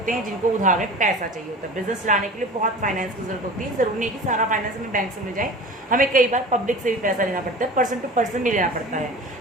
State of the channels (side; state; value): both; normal; correlation 0.37